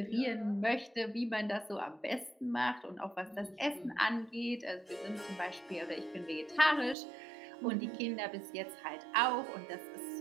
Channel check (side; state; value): left; drops out; at 7.0 s